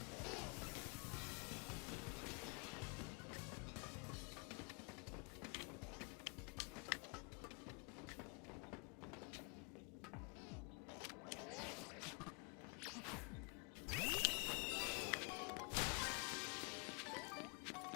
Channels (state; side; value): quieter; right; 34.1 dB